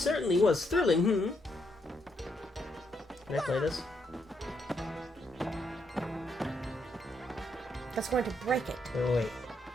was thrilling, Can I play this? That's going to break it. Oh, wait.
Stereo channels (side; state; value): both; normal; correlation 0.77